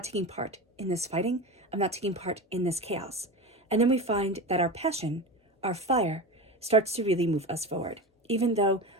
taking part in this fighting. I'm not taking part in this chaos. And then we find that our passion, our fire, starts to really move us forward. Even though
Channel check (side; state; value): both; normal; correlation 0.26